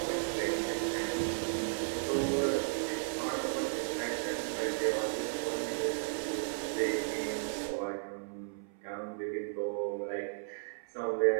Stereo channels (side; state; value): left; silent; 55 dB below the other